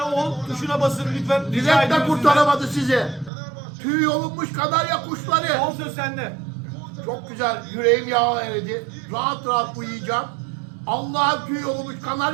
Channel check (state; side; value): drops out; left; at 3.3 s